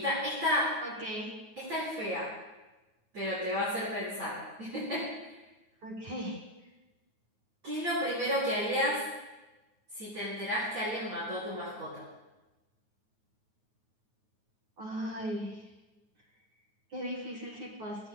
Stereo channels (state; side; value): late; left; 9.4 ms